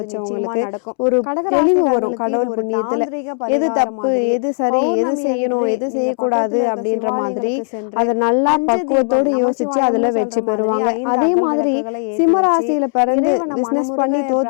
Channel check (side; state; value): right; silent; 68 dB below the other